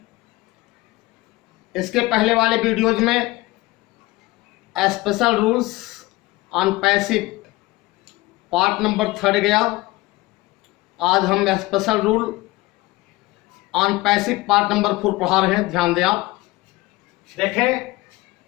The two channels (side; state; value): right; quieter; 20.3 dB